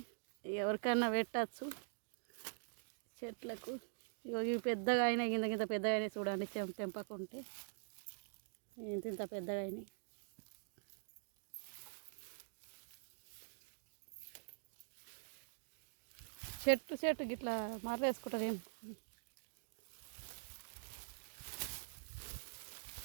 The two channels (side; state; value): left; silent; digital silence